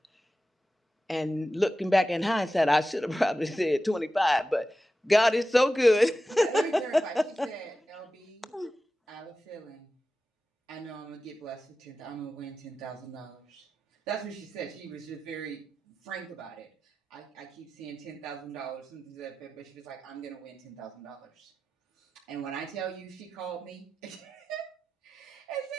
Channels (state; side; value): normal; both; correlation 0.93